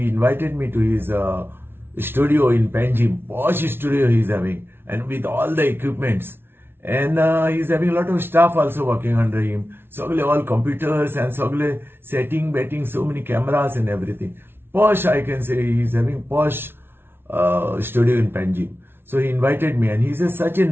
invited me to his studio in Panjim, posh studio he's having, and with all the equipments. And he's having a lot of staff also working under him. Sogle all computers and sogle setting, betting, so many cameras and everything. Posh, I can say, he's having posh studio in Panjim. So he invited me, and he's such a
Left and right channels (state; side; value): late; left; 0.11 ms